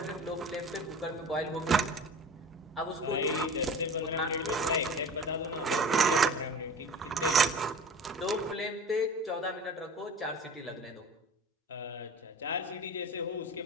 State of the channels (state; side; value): normal; both; correlation 0.37